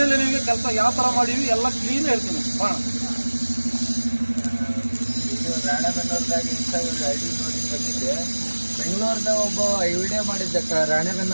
ನಿಮಗೆ ಕೆಲಸ ಯಾವ ಥರ ಮಾಡೀವಿ ಎಲ್ಲ ಕ್ಲೀನ್ ಹೇಳ್ತೀನಿ. ಬಾಣ ಇದು ರಾಣೆಬೆನ್ನೂರದಾಗ ಇನ್ಸ್ಟಾಗ್ರಾಮ್ ಐಡಿ ನೋಡಿ ಬಂದಿದ್ದೆ. ಬೆಂಗಳೂರ್ದಾಗ ಒಬ್ಬ ವಿಡಿಯೋ ಮಾಡಿದ್ದ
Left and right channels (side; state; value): both; inverted; correlation -1.00